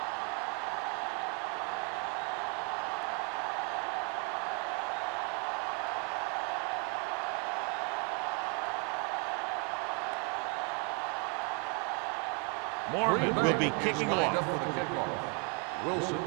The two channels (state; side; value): quieter; left; 36.8 dB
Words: Mormon will be kicking lined off. up for the kickoff. Wilson